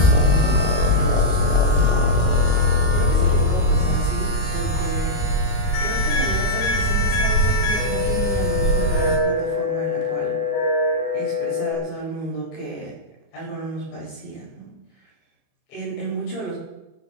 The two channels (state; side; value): late; right; 31 ms